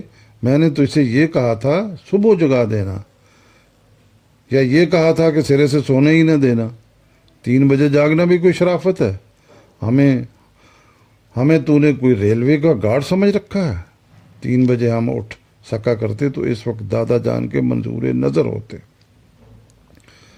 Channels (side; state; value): both; identical; correlation 1.00